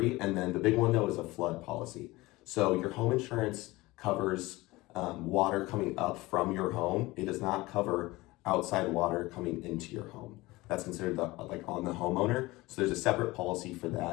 And then the big one though is a flood policy. So your home insurance covers water coming up from your home. It does not cover outside water coming into your home. That's considered on the homeowner. So there's a separate policy for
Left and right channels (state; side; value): quieter; right; 20.5 dB